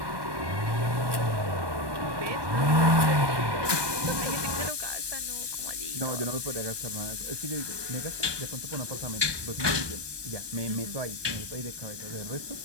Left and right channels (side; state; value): left; late; 1.2 ms